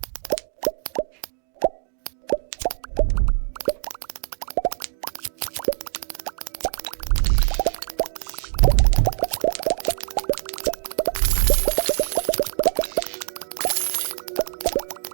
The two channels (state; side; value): silent; left; digital silence